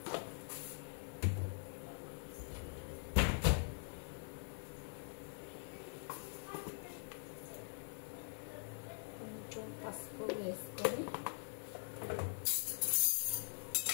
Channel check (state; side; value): silent; right; digital silence